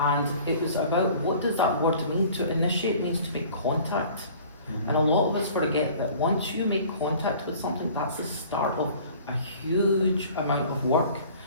it was about what does that word mean? To initiate means to make contact. And a lot of us forget that once you make contact with something, that's the start of a huge amount of work.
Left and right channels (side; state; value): both; inverted; correlation -0.49